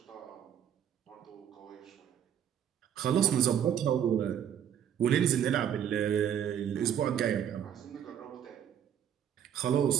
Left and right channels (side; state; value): left; quieter; 9.3 dB